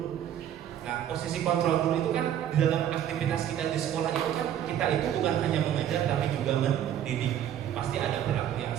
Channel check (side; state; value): left; quieter; 10.5 dB